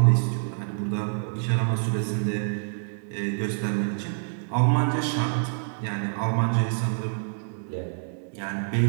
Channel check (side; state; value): left; silent; digital silence